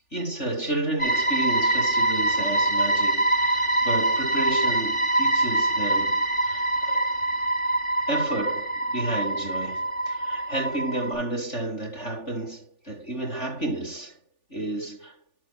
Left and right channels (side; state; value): right; late; 3.4 ms